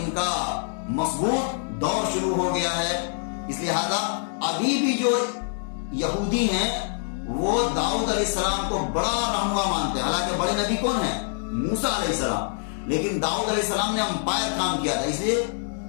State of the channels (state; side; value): silent; right; digital silence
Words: کا مضبوط دور شروع ہو گیا ہے۔ اس لہذا ابھی بھی جو یہودی ہیں وہ داؤد علیہ السلام کو بڑا رہنما مانتے ہیں، حالانکہ بڑے نبی کون ہیں؟ موسیٰ علیہ السلام، لیکن داؤد علیہ السلام نے امپائر کام کیا تھا، اس لیے